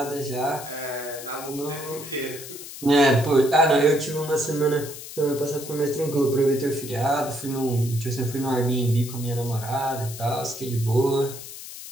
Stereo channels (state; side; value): noise; left; hiss, 12 dB below the sound